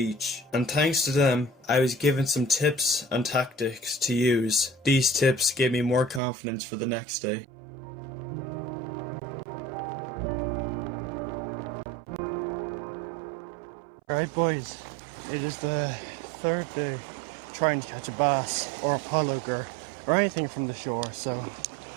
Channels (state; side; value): drops out; left; at 6.2 s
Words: and thanks to them, I was given some tips and tactics to use. These tips gave me more confidence for the next day. Alright boys, it is the third day trying to catch a bass or a pollock or anything from the shore, so